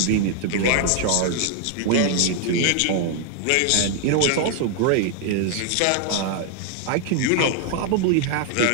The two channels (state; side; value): different; both; correlation 0.00